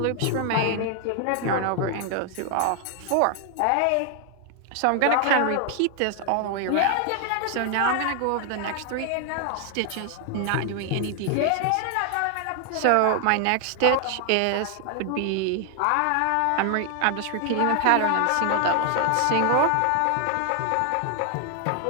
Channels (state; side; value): different; both; correlation 0.00